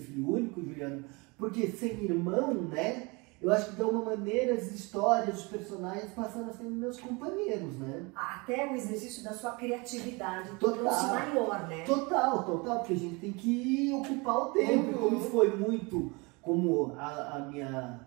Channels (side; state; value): left; quieter; 27.5 dB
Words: filho único, Juliana, porque sem irmão, né? Eu acho que de alguma maneira as histórias, os personagens passaram a ser meus companheiros, né? Até o exercício da sua criatividade tornou-se maior, né? Total, porque a gente tem que ocupar o tempo. E como foi muito, como